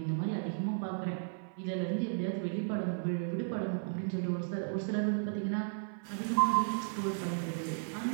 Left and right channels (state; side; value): silent; left; 55 dB below the other